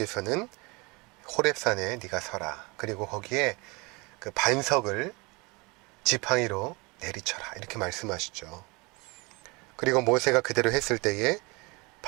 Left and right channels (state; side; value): quieter; left; 26.9 dB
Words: 호렙산에 네가 서라. 그리고 거기에 그 반석을 지팡이로 내리쳐라. 이렇게 말씀하시죠. 그리고 모세가 그대로 했을 때에